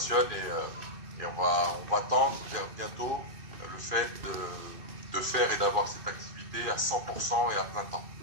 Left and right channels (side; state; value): left; late; 2.6 ms